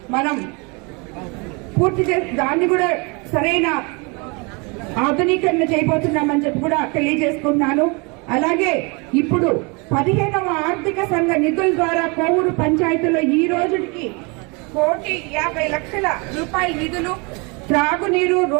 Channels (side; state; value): left; quieter; 30.2 dB